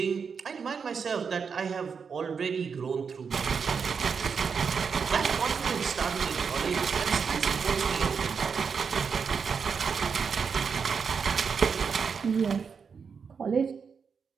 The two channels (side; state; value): left; quieter; 6.0 dB